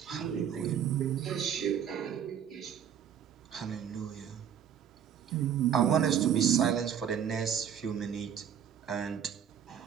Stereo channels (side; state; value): left; quieter; 8.8 dB